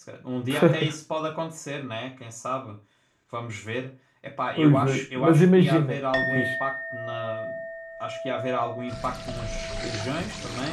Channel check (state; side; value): identical; both; correlation 1.00